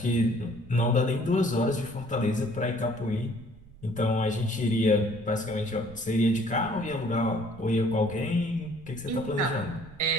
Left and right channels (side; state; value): right; noise; rumble, 20 dB below the sound